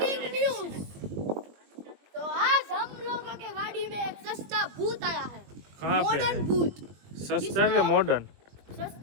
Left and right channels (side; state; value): left; late; 20 ms